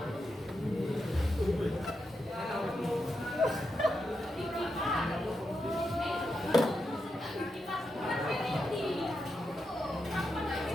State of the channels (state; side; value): normal; both; correlation 0.86